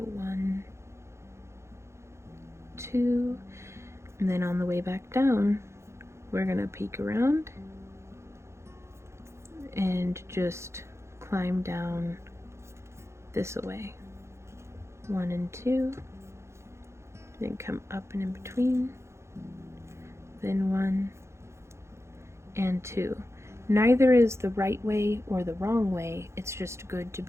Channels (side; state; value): left; late; 0.13 ms